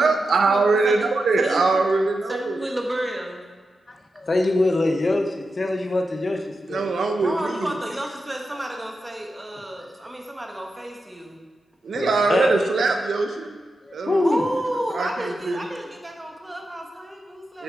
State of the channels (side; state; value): both; normal; correlation 0.89